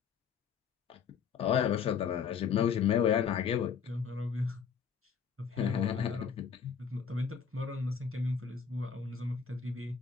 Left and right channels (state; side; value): quieter; right; 6.6 dB